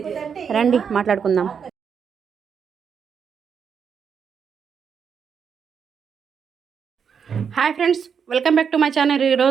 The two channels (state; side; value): quieter; left; 6.9 dB